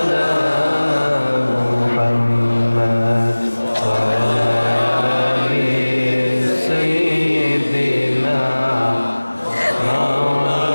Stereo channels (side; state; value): both; inverted; correlation -1.00